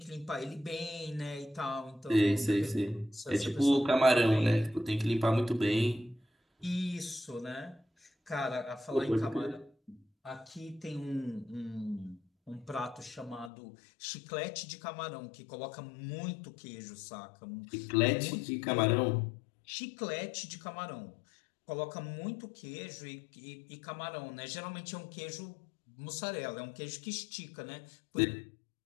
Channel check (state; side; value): drops out; right; at 13.5 s